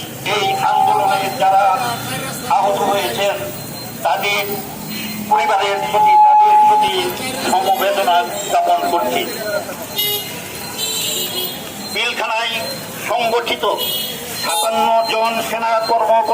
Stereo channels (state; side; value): identical; both; correlation 1.00